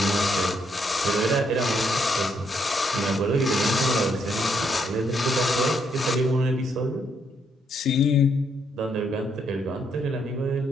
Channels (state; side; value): normal; both; correlation 0.74